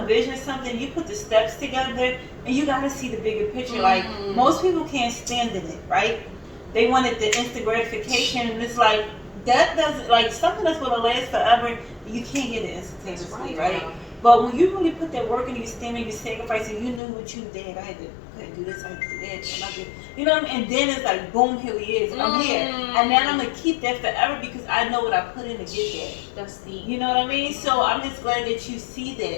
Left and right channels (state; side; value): drops out; right; at 17.0 s